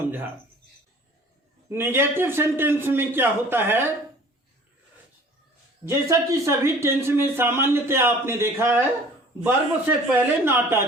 नेगेटिव सेंटेंस में क्या होता है, जैसा कि सभी टेंस में सामान्यतः आपने देखा है, वर्ब से पहले नॉट आ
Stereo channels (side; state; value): both; normal; correlation 0.49